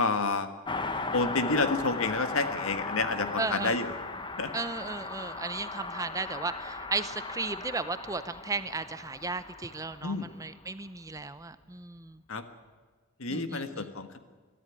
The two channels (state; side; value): normal; both; correlation -0.08